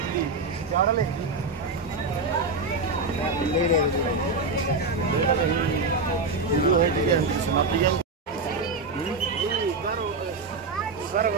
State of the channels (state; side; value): quieter; left; 3.7 dB